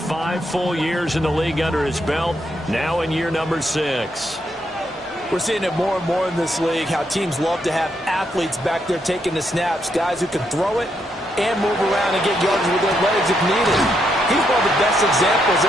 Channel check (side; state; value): both; normal; correlation 0.78